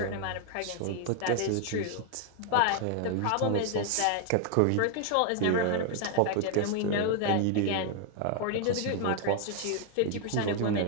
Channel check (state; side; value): different; both; correlation 0.00